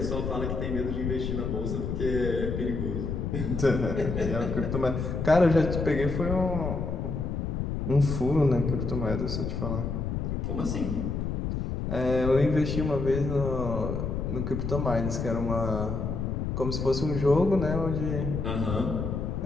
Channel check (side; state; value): left; noise; rumble, 2 dB below the sound